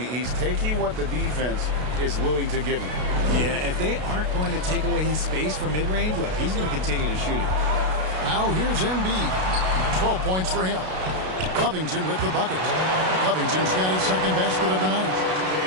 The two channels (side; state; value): left; late; 32 ms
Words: taking what the defense is willing to give him. Yeah, if they aren't going to take away his space from mid-range, look, he's going to continue to shoot it. Now here's Embiid. 12 points for him. Covington with the bucket. Covington's got his second basket of the night.